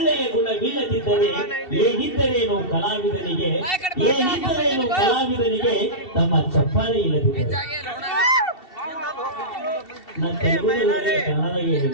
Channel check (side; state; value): right; late; 2.7 ms